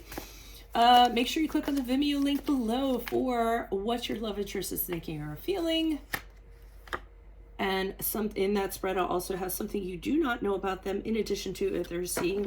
Make sure you click on the Vimeo link below for what your love interest is thinking or feeling. And in that spread, I'll also have something you do not know about them, in addition to if they're seeing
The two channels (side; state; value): both; identical; correlation 1.00